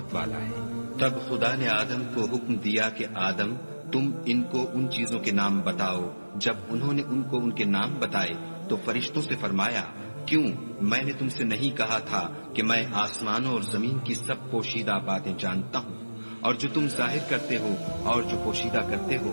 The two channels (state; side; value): inverted; both; correlation -1.00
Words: वाला है। तब खुदा ने आदम को हुक्म दिया कि आदम, तुम इनको उन चीजों के नाम बताओ। जब उन्होंने उनको उनके नाम बताए तो फरिश्तों से फरमाया, क्यों, मैंने तुमसे नहीं कहा था कि मैं आसमानों और जमीन की सब पोशीदा बातें जानता हूँ, और जो तुम जाहिर करते हो और जो पोशीदा करते हो